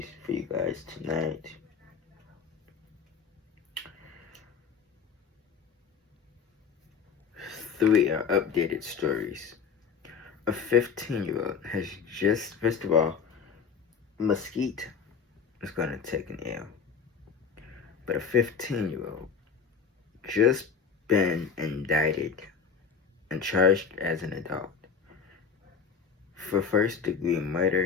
you guys tonight. Three are updated stories. A 15-year-old has just, first of all, Mesquite is going to take an L. But a 15-year-old just been indicted and charged as an adult for first-degree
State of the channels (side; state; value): right; quieter; 6.2 dB